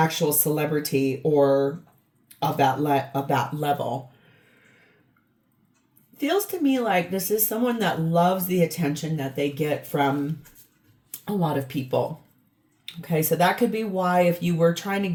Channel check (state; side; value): identical; both; correlation 1.00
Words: celebrity or of that level. Feels to me like this is someone that loves the attention that they get from a lot of people. Okay, so that could be why if you were trying to